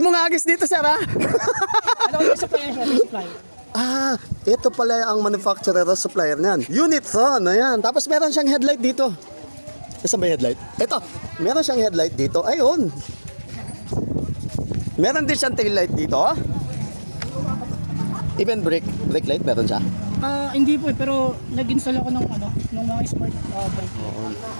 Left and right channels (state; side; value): inverted; both; correlation -1.00